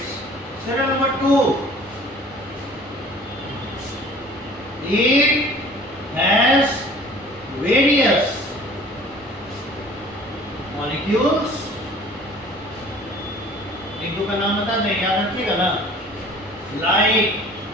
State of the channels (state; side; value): normal; both; correlation 0.48